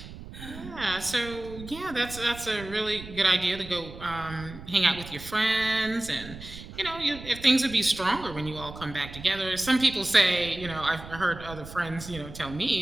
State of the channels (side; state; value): right; noise; rumble, 14 dB below the sound